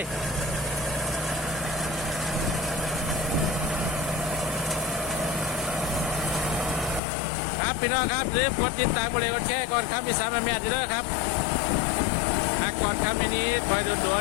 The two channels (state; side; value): drops out; right; at 7.0 s